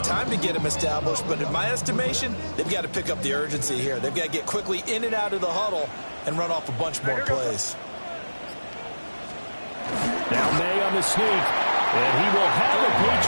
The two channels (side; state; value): both; inverted; correlation -1.00